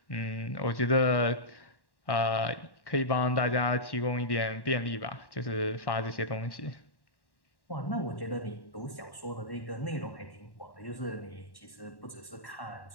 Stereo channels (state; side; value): late; right; 1.1 ms